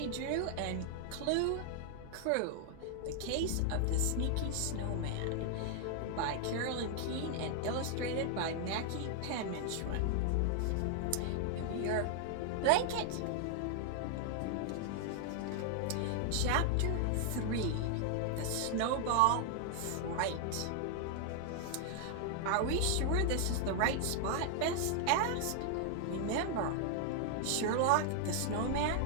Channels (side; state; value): both; different; correlation 0.00